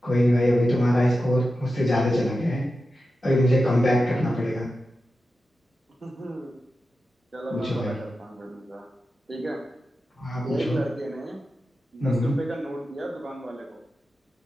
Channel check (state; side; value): normal; both; correlation 0.91